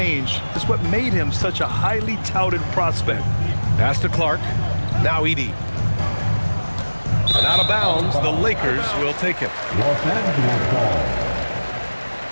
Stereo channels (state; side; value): inverted; both; correlation -1.00